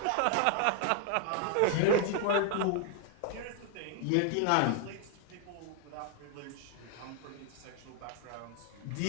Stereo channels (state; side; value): different; both; correlation 0.01